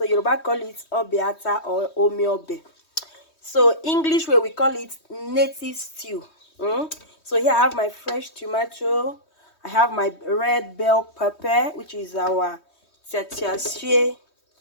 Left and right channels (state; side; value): late; right; 3.2 ms